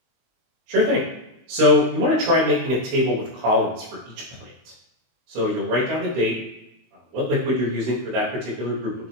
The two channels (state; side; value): late; left; 23 ms